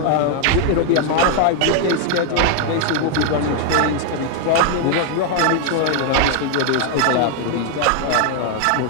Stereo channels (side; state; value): both; different; correlation 0.00